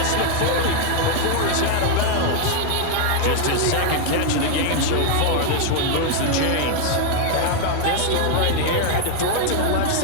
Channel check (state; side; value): different; both; correlation 0.00